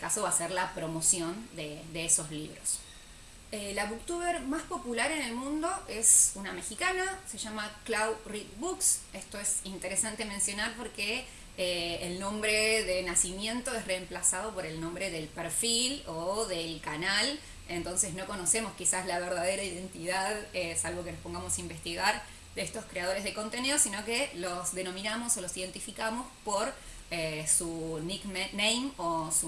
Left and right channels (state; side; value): identical; both; correlation 1.00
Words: va a ser la promoción de esos libros. La booktuber más popular en el mundo es una mexicana, se llama Clau Read Books. Esto es interesante mencionar porque el nombre de nacimiento es reemplazado por el nombre del perfil o del canal, entonces no conocemos quizás la verdadera identidad, salvo que nos pongamos a investigar, de estos creadores de contenido, sino que los denominamos o los identificamos por su nickname o